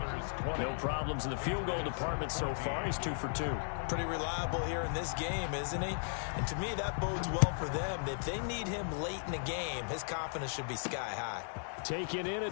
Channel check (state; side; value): silent; right; digital silence